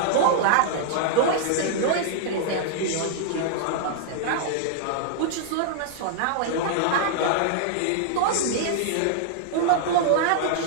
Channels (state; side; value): different; both; correlation -0.01